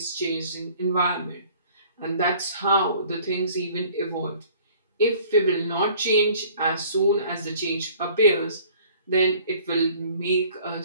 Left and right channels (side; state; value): both; inverted; correlation -0.52